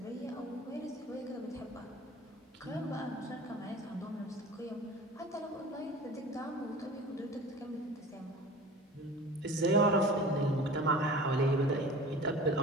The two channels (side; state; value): both; normal; correlation 0.40